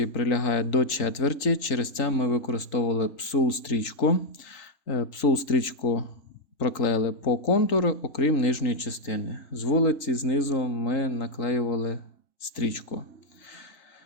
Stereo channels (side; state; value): right; late; 3.8 ms